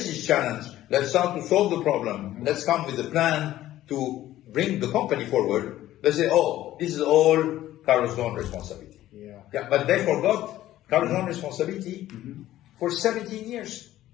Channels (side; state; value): right; quieter; 14.0 dB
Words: this challenge, let's start to solve the problem, let's come with a plan to bring the company forward, they say, oh, this is all Carlos Ghosn's responsibility. Yeah, but they forgot Carlos Ghosn's responsibility for 17 years.